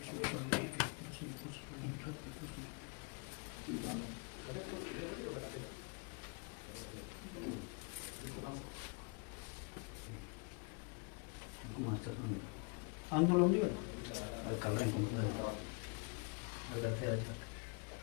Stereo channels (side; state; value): right; quieter; 33.6 dB